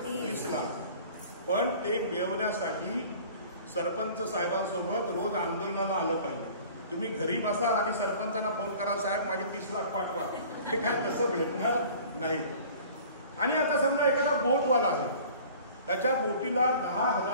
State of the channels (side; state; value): both; inverted; correlation -0.46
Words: 30 लाख. पण ते मिळवण्यासाठी सरपंच साहेबांसोबत रोज आंदोलनाला आलं पाहिजे. तुम्ही घरी बसाल आणि सरपंचांना फोन कराल, साहेब माझे 30 लाख पाठवा. ते काय तसं भेटणार नाही. आणि आता समजा एखादा बोटवाला आहे, त्याच्या बोटीला